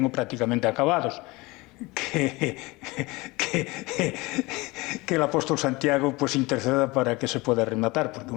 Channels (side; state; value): right; quieter; 23.0 dB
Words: prácticamente acabados. Que el apóstol Santiago pues interceda para que se pueda rematar, porque